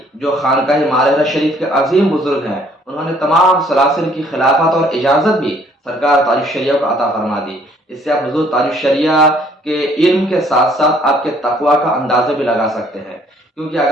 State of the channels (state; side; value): normal; both; correlation 0.61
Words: جو خانقاہ مارہرہ شریف کے عظیم بزرگ ہیں، انہوں نے تمام سلاسل کی خلافت اور اجازت بھی سرکار تاج الشریعہ کو عطا فرما دی۔ اس سے آپ حضور تاج الشریعہ کے علم کے ساتھ ساتھ آپ کے تقوی کا اندازہ بھی لگا سکتے ہیں، کیونکہ